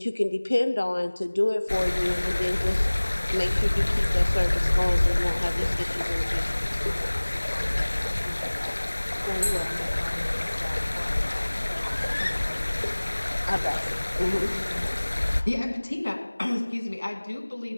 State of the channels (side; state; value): both; inverted; correlation -1.00